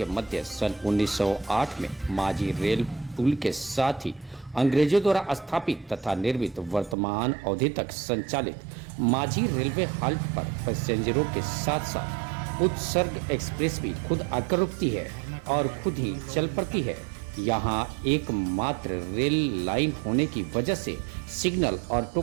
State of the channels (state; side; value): drops out; left; at 7.0 s